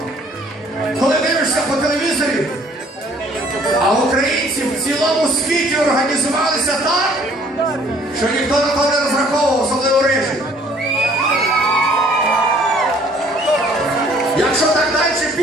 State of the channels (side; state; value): both; normal; correlation 0.58